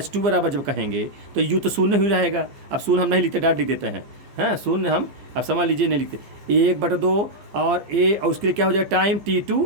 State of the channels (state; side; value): late; left; 14 ms